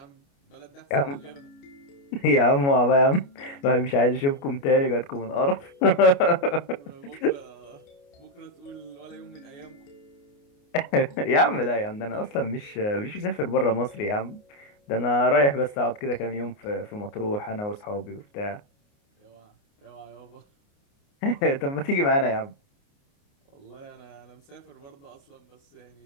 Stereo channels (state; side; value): late; right; 29 ms